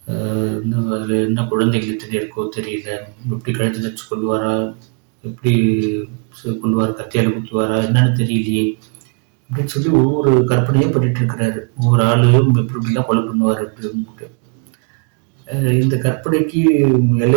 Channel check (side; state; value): left; quieter; 37.1 dB